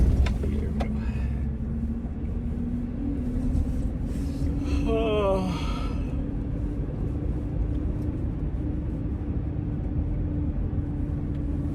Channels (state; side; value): identical; both; correlation 1.00